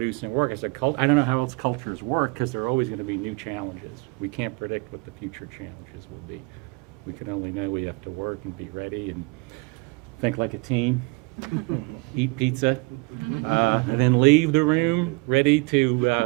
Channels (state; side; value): quieter; left; 28.0 dB